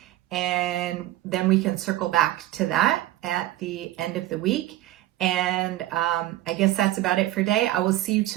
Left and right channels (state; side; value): quieter; left; 15.5 dB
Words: and then we can circle back to that at the end of the week. And I guess that's about it for today. I will see you